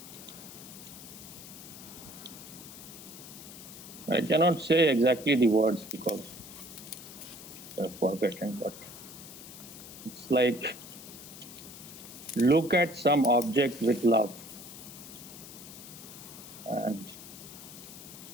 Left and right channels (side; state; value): left; noise; hiss, 14 dB below the sound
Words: I cannot say exactly the words because I've forgotten, but it's like look at some object with love and